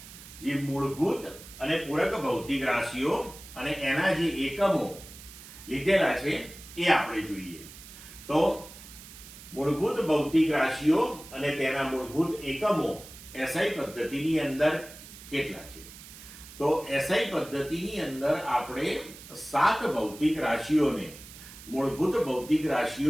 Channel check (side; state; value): right; noise; hiss, 17 dB below the sound